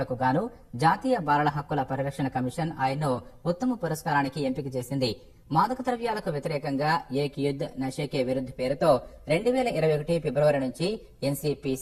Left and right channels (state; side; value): identical; both; correlation 1.00